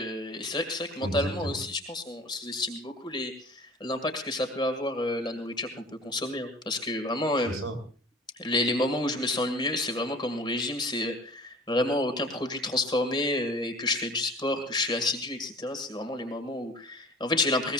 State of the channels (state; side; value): normal; both; correlation 0.45